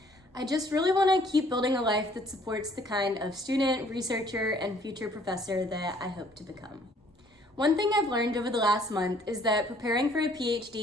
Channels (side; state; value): both; normal; correlation 0.60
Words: I just really wanna keep building a life that supports the kind of student, researcher, and future professor that I hope to become. One thing I've learned over the last month is that preparing for a